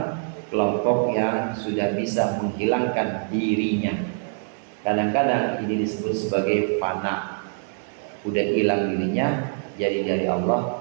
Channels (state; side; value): silent; left; 62 dB below the other